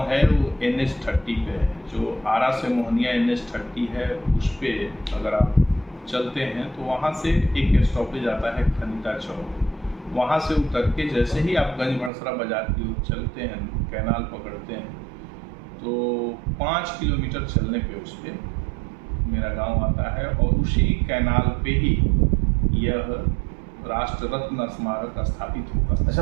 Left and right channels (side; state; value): left; drops out; at 12.1 s